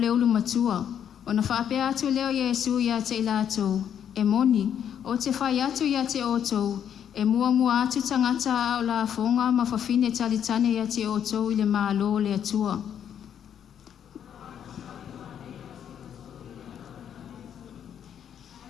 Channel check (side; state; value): right; quieter; 9.0 dB